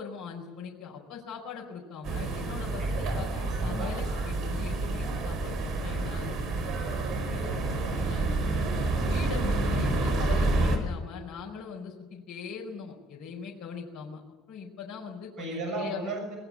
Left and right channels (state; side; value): normal; both; correlation 0.67